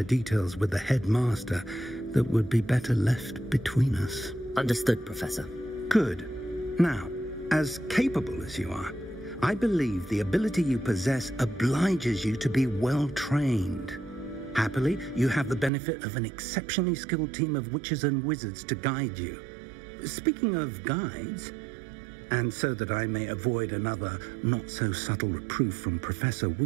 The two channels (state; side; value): drops out; left; at 15.7 s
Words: details with the headmaster that would be better left between us. Understood, Professor. Good. Now, as capable as you are, I believe the ability you possess obliges you to be well trained. Happily, you have the benefit of an exceptionally skilled team of witches and wizards to guide you. Speaking of guides, and so that I may avoid another not-so-subtle reproof from Professor